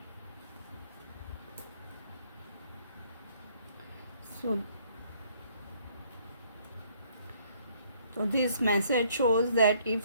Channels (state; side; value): inverted; both; correlation -0.63